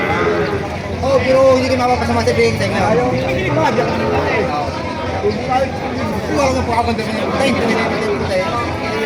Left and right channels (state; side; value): identical; both; correlation 1.00